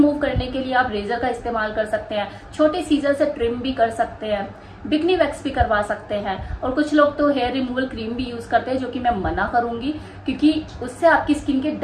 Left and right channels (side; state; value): both; identical; correlation 1.00